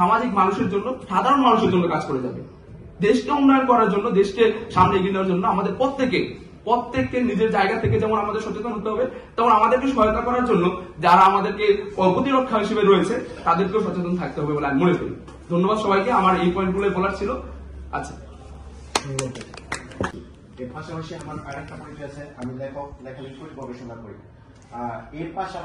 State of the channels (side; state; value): both; identical; correlation 1.00